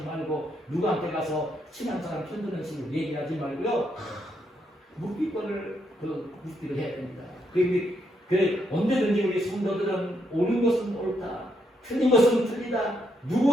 누구한테 가서 친한 사람 편드는 식으로 얘기하지 말고요, 묵비권을 묵비를 해야 됩니다. 그래 언제든지 우리 성도들은 옳은 것은 옳다, 틀린 것은 틀리다,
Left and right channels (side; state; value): both; normal; correlation 0.76